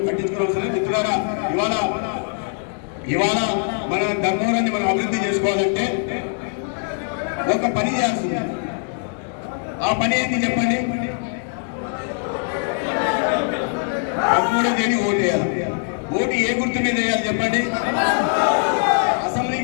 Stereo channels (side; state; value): right; silent; 58 dB below the other